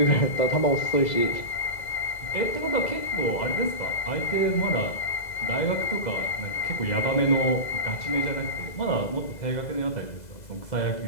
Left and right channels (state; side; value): late; right; 2.0 ms